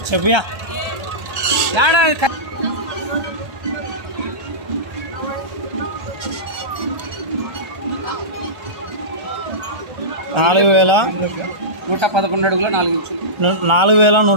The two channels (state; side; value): late; left; 1.3 ms